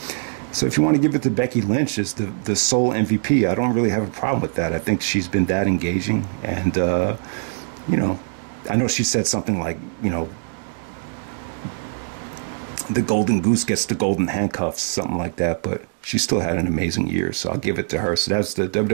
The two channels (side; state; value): left; silent; digital silence